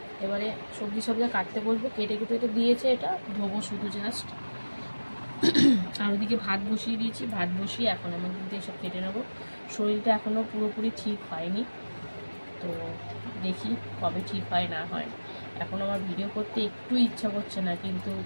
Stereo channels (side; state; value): both; inverted; correlation -1.00